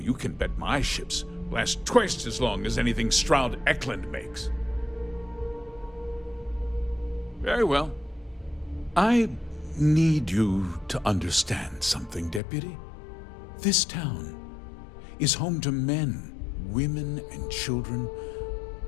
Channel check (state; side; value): drops out; right; at 12.4 s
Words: can bet my ships last twice as long as anything Stroud Eklund makes. Very well. I need you to understand something, Deputy. This town is home to men, women, and children